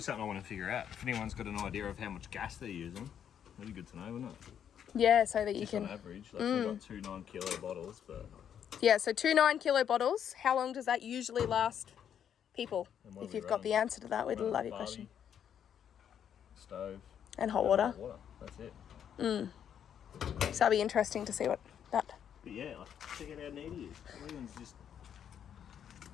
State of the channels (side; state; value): right; quieter; 8.9 dB